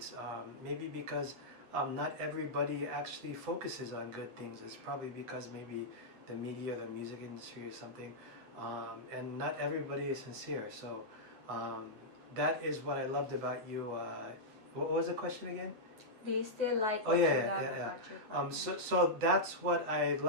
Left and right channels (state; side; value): late; left; 9.5 ms